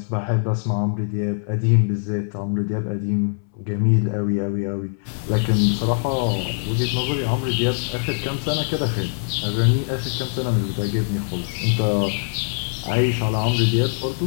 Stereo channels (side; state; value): right; silent; 64 dB below the other